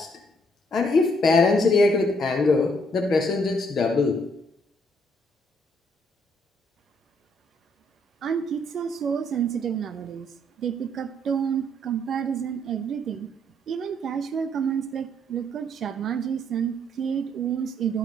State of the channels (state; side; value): normal; both; correlation 0.69